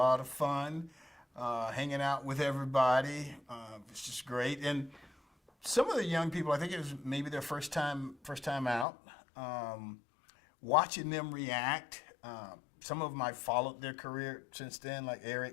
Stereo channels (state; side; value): drops out; right; at 8.8 s